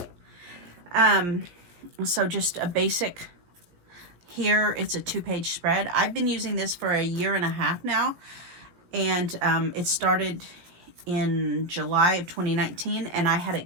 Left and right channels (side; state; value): left; late; 17 ms